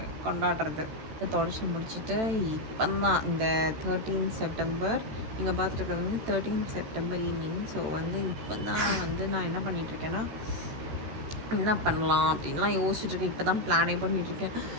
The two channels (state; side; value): late; left; 14 ms